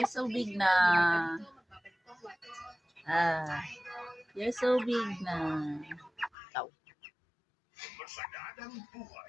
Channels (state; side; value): drops out; right; at 6.3 s